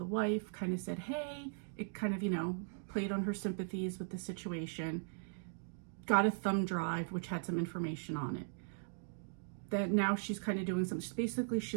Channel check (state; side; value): silent; left; digital silence